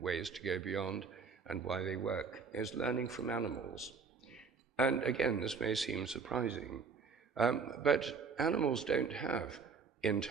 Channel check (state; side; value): quieter; left; 5.2 dB